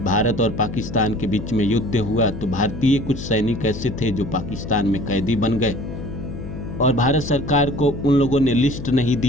भारत और पाकिस्तान के बीच में युद्ध हुआ तो भारतीय कुछ सैनिक ऐसे थे जो पाकिस्तान में कैदी बन गए और भारत सरकार को उन लोगों ने लिस्ट नहीं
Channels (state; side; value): noise; left; hum, 9 dB below the sound